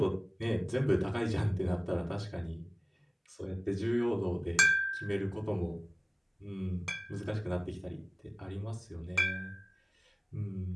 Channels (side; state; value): both; identical; correlation 1.00